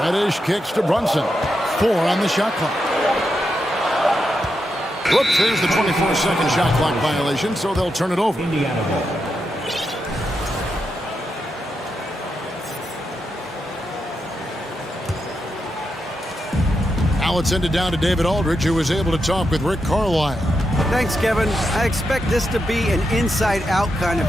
Reddish kicks to Brunson. 4 on the shot clock. Whoops, there's the 24-second shot clock violation, so they'll turn it over. Indiana ball. Now it's ended down to David Aldridge, who was able to talk with Rick Carlisle. Thanks, Kevin. I expect this to be an inside-out kind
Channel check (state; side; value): normal; both; correlation 0.85